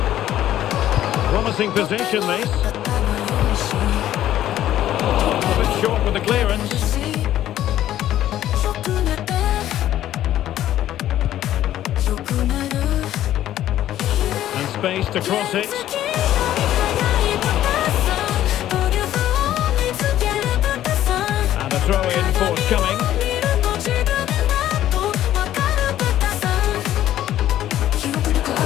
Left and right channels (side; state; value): right; quieter; 12.5 dB